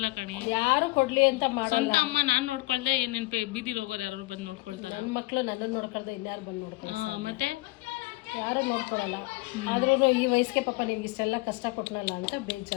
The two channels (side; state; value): right; quieter; 22.5 dB